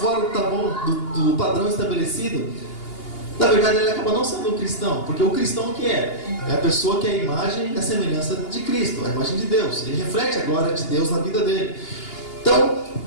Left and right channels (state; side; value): late; right; 2.8 ms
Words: do padrão estabelecido, na verdade, ele acaba não sendo um cristão. Porque o cristão o que é? É a pessoa que é a imagem e a semelhança de Cristo, a imagem de Deus. Ele reflete a glória de Deus na vida dele. Então,